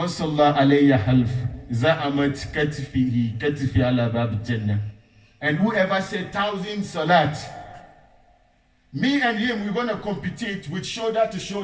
صَلَّى عَلَيْهِ حَلْفٍ زَعَمَتْ كَتِفِهِ كَتِفِي عَلَى بَابِ الْجَنَّةِ. And whoever said 1,000 salat, me and him, we're going to compete with shoulder to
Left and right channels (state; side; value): identical; both; correlation 1.00